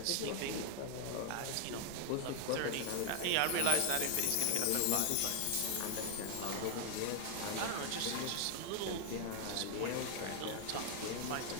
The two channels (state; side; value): different; both; correlation 0.00